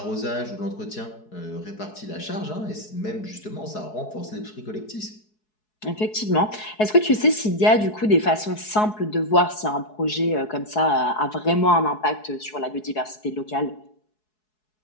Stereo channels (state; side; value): late; right; 4.7 ms